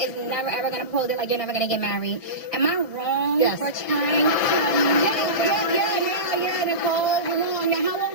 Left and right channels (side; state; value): right; late; 1.7 ms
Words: never ever gonna propose it, like you're never gonna get married. Am I wrong Yes. for trying to? Yeah, Nicole, you're wrong. Now, how